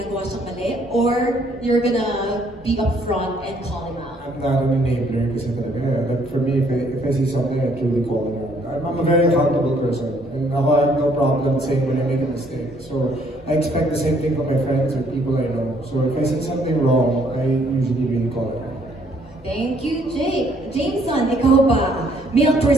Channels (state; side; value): normal; both; correlation 0.65